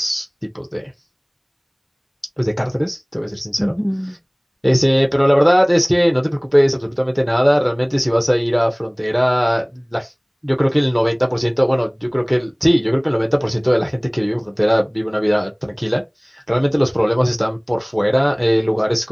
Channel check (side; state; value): both; identical; correlation 1.00